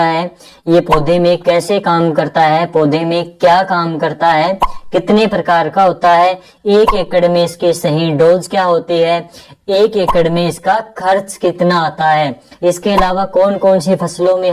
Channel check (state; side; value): identical; both; correlation 1.00